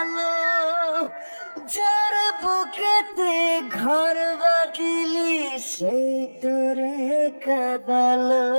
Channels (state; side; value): inverted; both; correlation -1.00